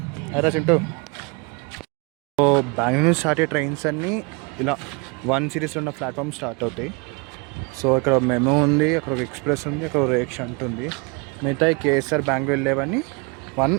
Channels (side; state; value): left; quieter; 30.6 dB